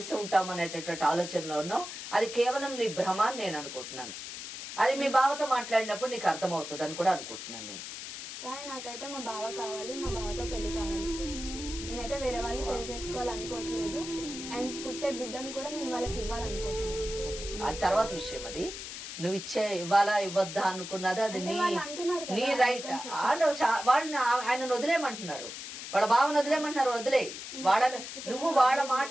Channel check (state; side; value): noise; left; hiss, 9 dB below the sound